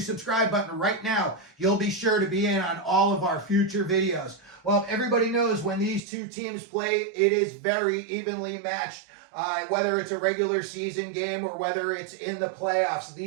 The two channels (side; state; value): left; drops out; at 6.0 s